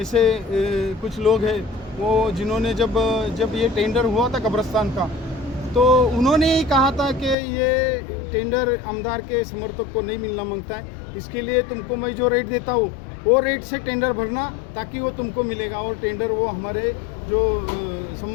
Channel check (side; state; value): right; drops out; at 7.4 s